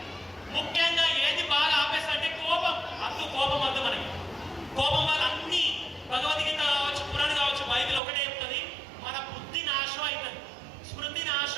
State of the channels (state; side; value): drops out; left; at 8.0 s